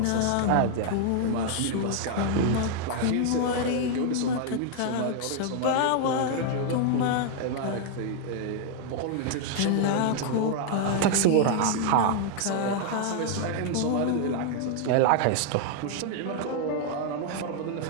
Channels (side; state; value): both; different; correlation 0.00